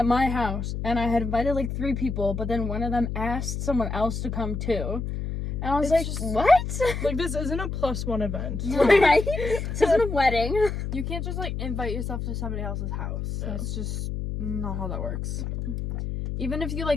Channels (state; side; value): noise; left; hum, 4 dB below the sound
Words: my house, and I had invited, like, 3 people, but then one of them asked someone else to come too. And I was It's like, just- what? Like, this isn't a +1 event. Right? This isn't a wedding. You can't just, like, invite yourself to somebody else's house. Yeah. That's just not how that works. Even if you,